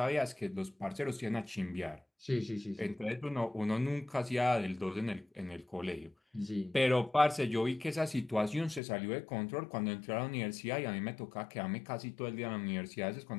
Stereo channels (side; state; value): right; drops out; at 8.8 s